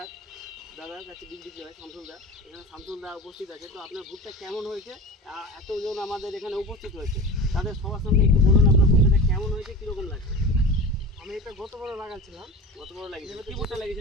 দাদার কাছে বিক্রি হয় শামসুলদা, এখানে শামসুলদা উপস্থিত আছে। তো আপনার ভুট্টা কেমন হয়েছে, এতজন আমাদের এখানে উপস্থিত হয়েছে, তাদের সবার সামনে একটু বলুন আপনার ভুট্টাটা কেমন হয়েছে, কীরকম লাগছে? আমি এটা গতবার লাগাচ্ছিলাম। গতবার লাগিয়েছিলেন? কি ভুট্টা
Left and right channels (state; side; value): normal; both; correlation 0.32